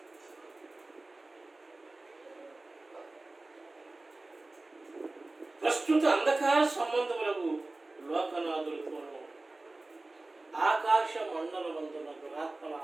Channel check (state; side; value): quieter; left; 3.0 dB